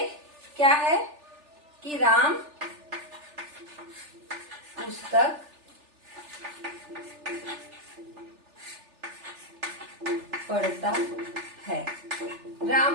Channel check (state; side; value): late; left; 3.4 ms